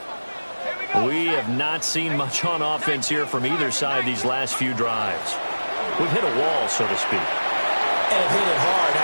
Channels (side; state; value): both; inverted; correlation -1.00